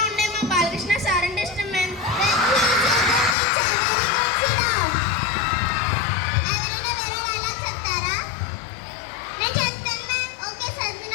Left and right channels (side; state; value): right; drops out; at 3.4 s